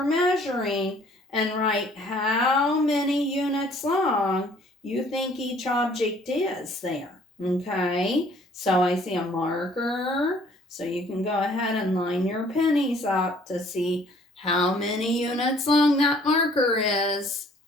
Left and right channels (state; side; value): normal; both; correlation 0.58